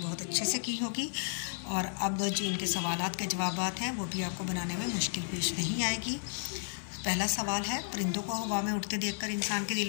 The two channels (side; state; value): right; silent; 56 dB below the other